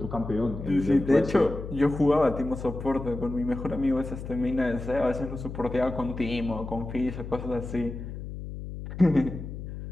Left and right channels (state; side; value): noise; left; hum, 9 dB below the sound